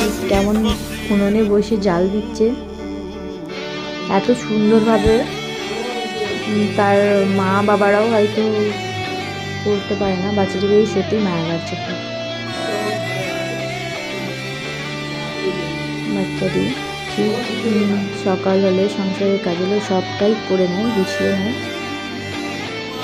কেমন উনুনে বসে জাল দিচ্ছে, এত সুন্দরভাবে তার মা বাবারাও হয়তো করতে পারে না। বাচ্চাটিকে সত্যি মায়া লাগছে খুব। বাচ্চাটি ঠিক সকাল হলে সংসারের কাজ হলে সবটাই করে নেয়, গুছিয়ে নেয়।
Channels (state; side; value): identical; both; correlation 1.00